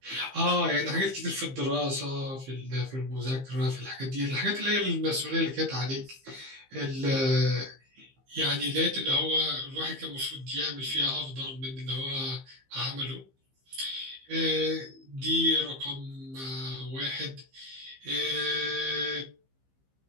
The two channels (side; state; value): left; late; 15 ms